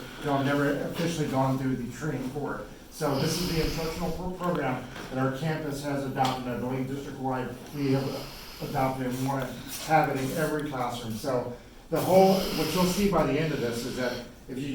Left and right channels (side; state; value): both; identical; correlation 1.00